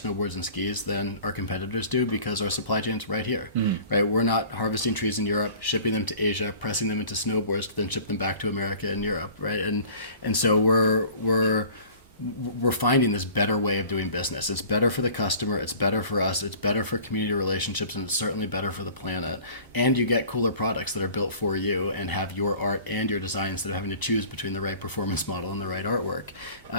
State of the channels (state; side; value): inverted; both; correlation -0.46